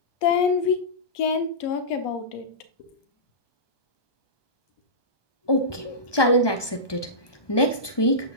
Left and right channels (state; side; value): late; right; 1.2 ms